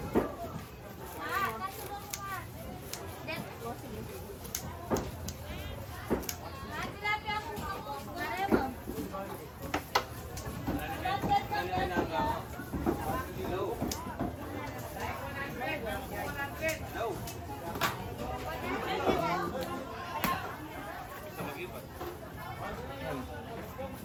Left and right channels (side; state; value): both; identical; correlation 1.00